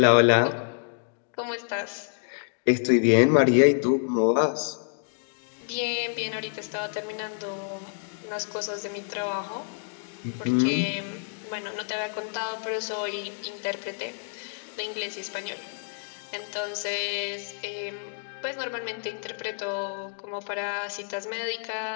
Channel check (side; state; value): right; silent; 59 dB below the other